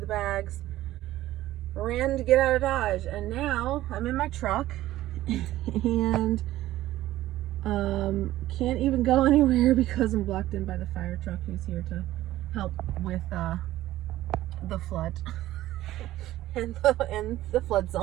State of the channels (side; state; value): left; quieter; 14.9 dB